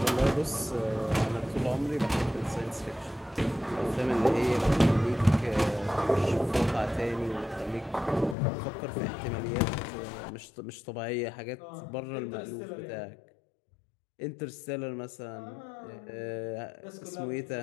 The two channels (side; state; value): right; drops out; at 8.3 s